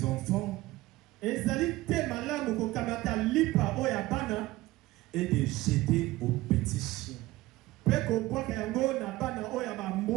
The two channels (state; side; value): quieter; left; 18.3 dB